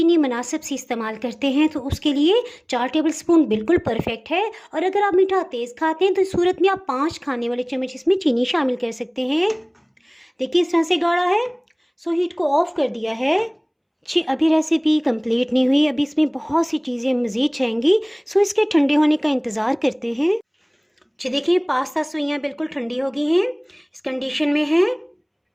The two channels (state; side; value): identical; both; correlation 1.00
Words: मुनासिब सी इस्तेमाल करते हैं तो उसके लिए 4 टेबल स्पून बिल्कुल परफेक्ट है और अगर आप मीठा तेज़ खाते हैं तो इस सूरत में आप 5 खाने वाले चम्मच इसमें चीनी शामिल कर सकते हैं। देखिए इस तरह से गाढ़ा है। सो हीट को ऑफ कर दिया है। जी, अभी रेसिपी कंप्लीट नहीं हुई, अभी इसमें बहुत सी चीज़ें मज़ीद चाहिए। सो इसके ठंडे होने का इंतज़ार करते हैं। जी देखिए, पास्ता सवैयाँ बिल्कुल ठंडी हो गई हैं, इस कंडीशन में है।